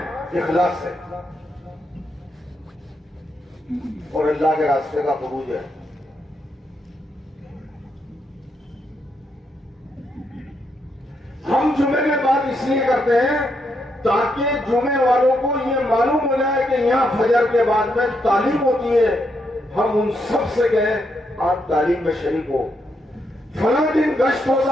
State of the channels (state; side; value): normal; both; correlation 0.79